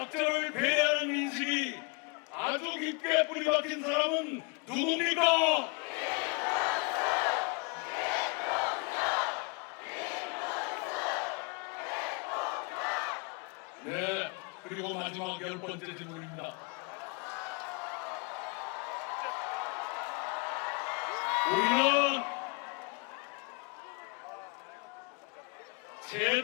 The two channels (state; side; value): quieter; right; 31.3 dB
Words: 배려하는 인식이 아주 깊게 뿌리박힌 사람은 누굽니까? 네, 그리고 마지막 열 번째 질문입니다. 우리는